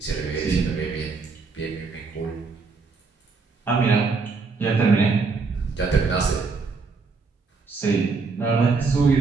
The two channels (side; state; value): left; quieter; 4.4 dB